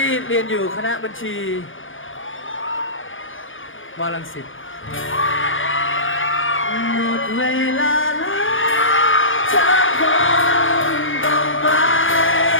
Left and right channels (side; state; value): right; late; 0.58 ms